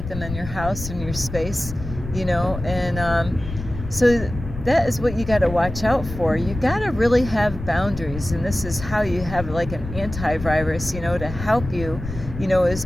them in your house, in your space, you know. And so that is what you got to watch out for. You got to really have boundaries, and this is how you have like an antivirus, you know, to help you, you know, is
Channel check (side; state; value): left; noise; rumble, 9 dB below the sound